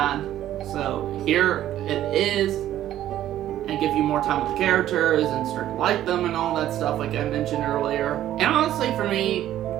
So, here it is. And give you more time with the characters and start to like them and all that stuff, like I mentioned earlier. And honestly, for me,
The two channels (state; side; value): quieter; left; 12.5 dB